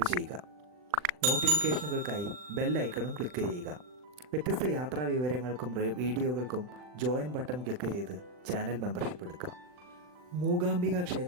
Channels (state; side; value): late; left; 40 ms